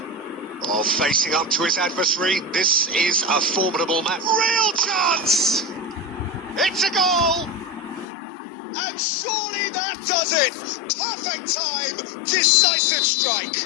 Oh, facing up to his adversary. This is a formidable match. Real chance! It's a goal! And surely that does it! Perfect time! Decisive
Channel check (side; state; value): right; drops out; at 8.1 s